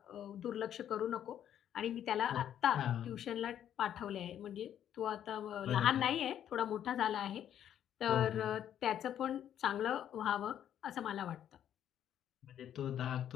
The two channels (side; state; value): right; quieter; 10.2 dB